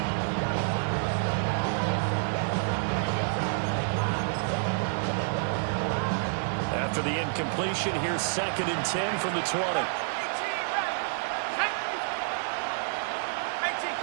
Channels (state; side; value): silent; left; digital silence